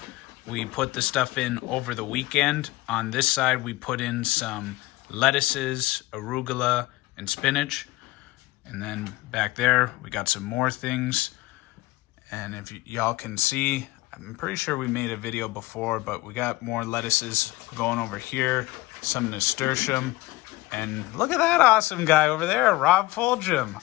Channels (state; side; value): quieter; right; 19.7 dB